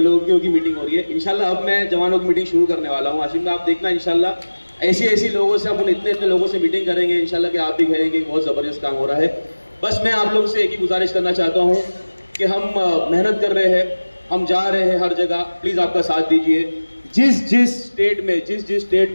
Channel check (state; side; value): inverted; both; correlation -1.00